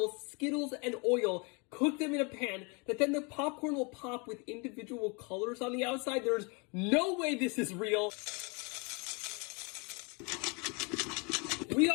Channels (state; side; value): quieter; right; 31.5 dB